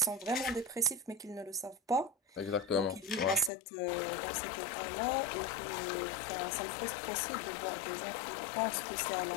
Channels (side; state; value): right; drops out; at 3.5 s